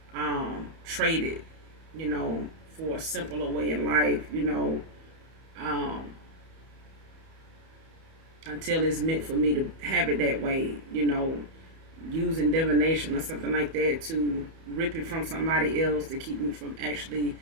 trade it, for a simpler way in life, um, until it's meant for me to have it that way, using divination or something like that to rip it from somebody else to keep me from actually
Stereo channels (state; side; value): late; left; 31 ms